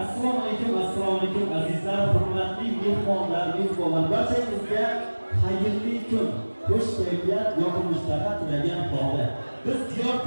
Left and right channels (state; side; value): inverted; both; correlation -1.00